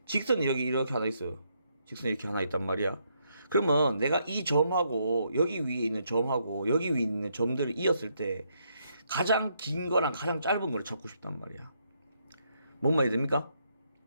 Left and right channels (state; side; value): inverted; both; correlation -0.76